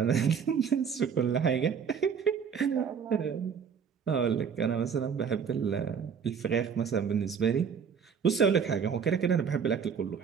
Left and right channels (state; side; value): quieter; left; 6.8 dB